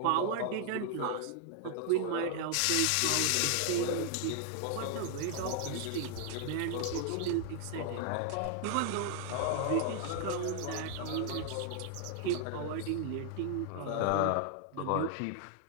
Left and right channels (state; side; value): different; both; correlation 0.00